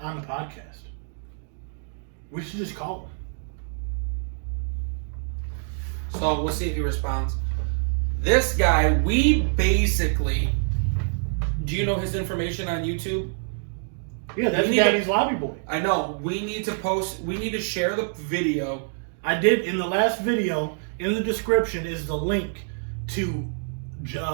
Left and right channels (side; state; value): left; silent; digital silence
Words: on the podcast. We should just call him. So we'll see if he responds. This guy, we basically. Do you know his information on YouTube? Yeah, that's Daddy's Lobby Boy. I know. We need to share the video. I did in the last video. In the description is the link to